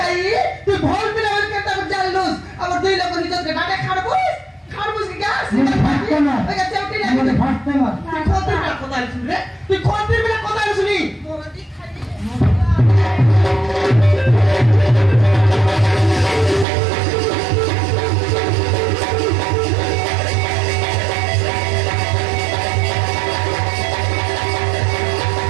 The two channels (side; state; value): left; drops out; at 16.7 s